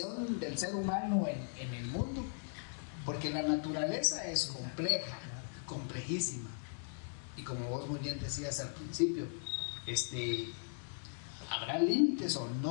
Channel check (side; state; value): right; silent; digital silence